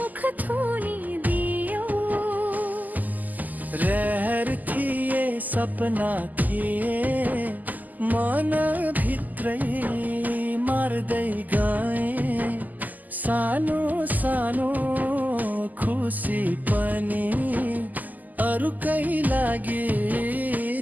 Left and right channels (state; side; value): late; left; 0.082 ms